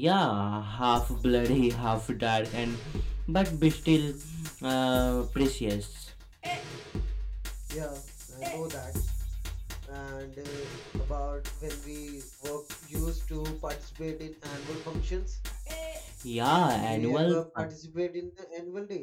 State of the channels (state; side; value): identical; both; correlation 1.00